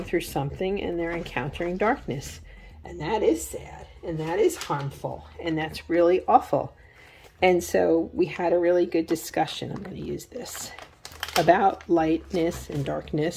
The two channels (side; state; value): both; identical; correlation 1.00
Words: through something and they're encountering darkness. And that is sad, and that is harmful, and that's really awful. And so we had a really good discussion, I'm going to use this, about lightness and